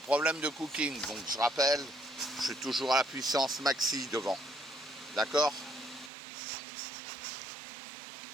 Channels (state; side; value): drops out; left; at 6.1 s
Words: de cooking, donc je rappelle, je suis toujours à la puissance maxi devant. D'accord